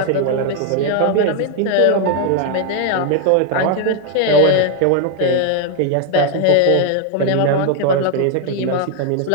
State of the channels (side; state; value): both; different; correlation 0.00